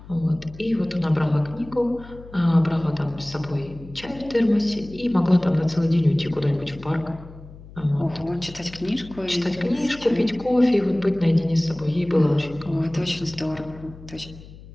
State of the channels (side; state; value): left; noise; hum, 18 dB below the sound